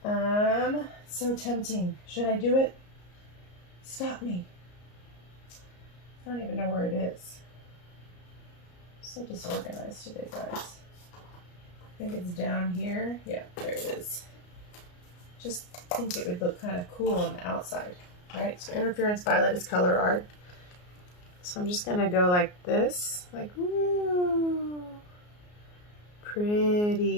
So tempting. Should I do it? Stop me. I don't even know where it is. So disorganized today, guys. I think it's down here. Yeah, there it is. Just think it would look kind of cool on the outside, right? So interference violet is Colourarte. So I'm just gonna go like this, like woo,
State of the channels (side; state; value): right; late; 34 ms